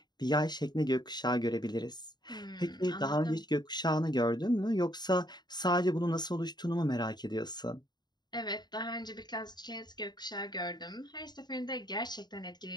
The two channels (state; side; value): late; right; 0.20 ms